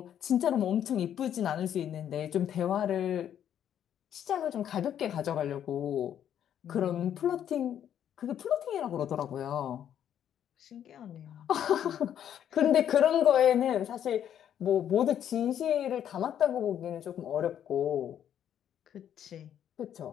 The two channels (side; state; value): right; quieter; 9.9 dB